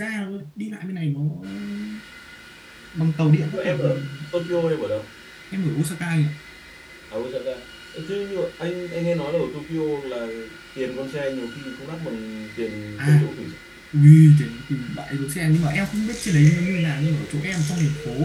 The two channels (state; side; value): identical; both; correlation 1.00